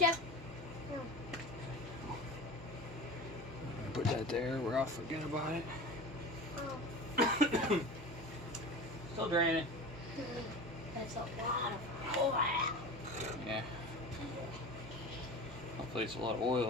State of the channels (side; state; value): both; normal; correlation 0.33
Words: Put that there where I'll forget about it. Oh. Still draining. That's a lot of oil. Yeah. Hopefully it's a lot of